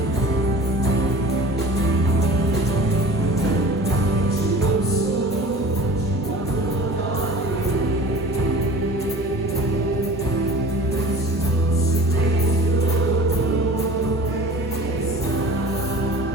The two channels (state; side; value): normal; both; correlation 0.42